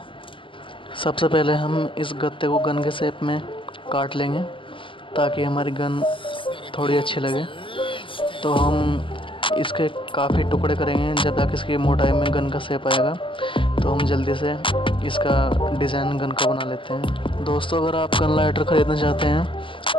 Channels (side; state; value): right; late; 0.25 ms